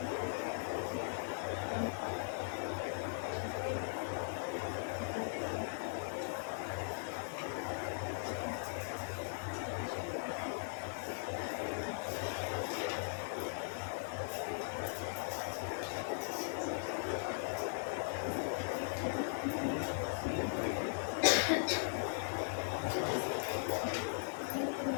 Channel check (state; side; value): silent; right; 52 dB below the other